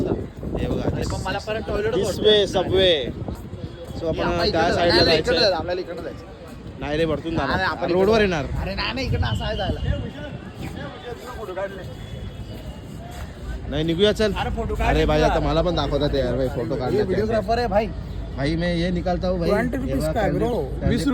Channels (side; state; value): both; identical; correlation 1.00